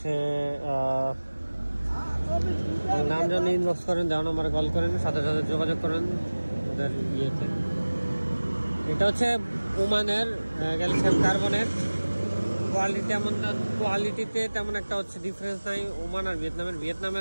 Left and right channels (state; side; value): inverted; both; correlation -1.00